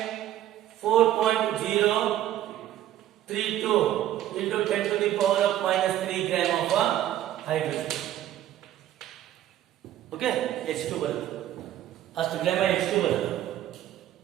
4.032 into 10 to the power of minus 3 gram of hydrogen. Okay, H2 ಬರುತ್ತೆ ಅಷ್ಟು gram H2 ಬರುತ್ತೆ.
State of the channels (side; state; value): left; quieter; 12.4 dB